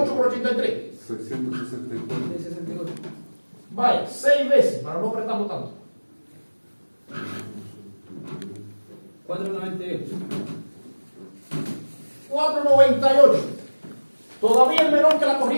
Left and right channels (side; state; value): both; inverted; correlation -1.00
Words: por 83. 664. 64. Vaya, 6 veces, para no apretarlo tanto. 498. 498. Todavía es menor que la